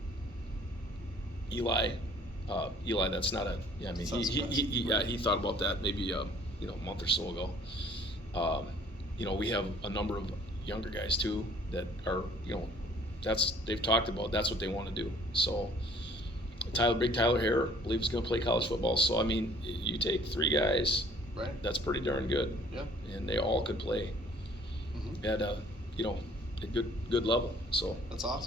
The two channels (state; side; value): normal; both; correlation 0.55